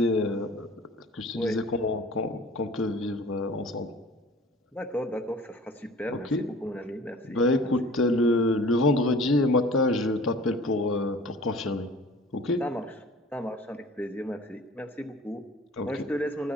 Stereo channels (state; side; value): normal; both; correlation 0.46